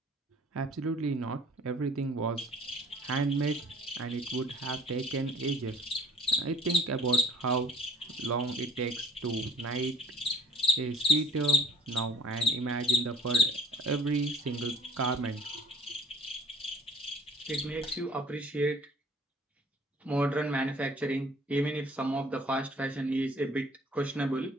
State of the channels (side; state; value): both; normal; correlation 0.52